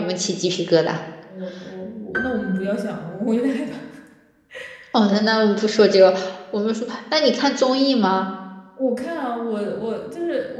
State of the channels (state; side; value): identical; both; correlation 1.00